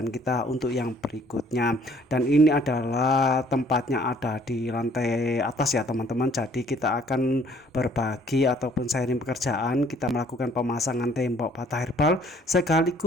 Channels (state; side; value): normal; both; correlation 0.59